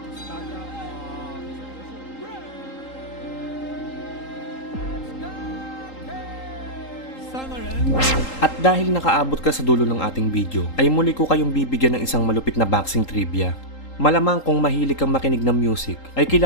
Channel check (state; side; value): late; right; 3.8 ms